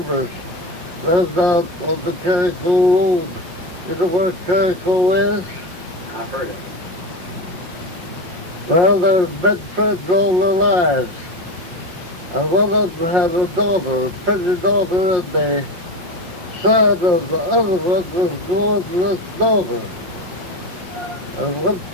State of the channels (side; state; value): left; late; 5.6 ms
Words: lived out on the Carico Road. You know where Carico is? I've heard it. Well, they've been friends all their lives. And one of them had a daughter, a pretty daughter, and the son of the other one was born to this daughter. And one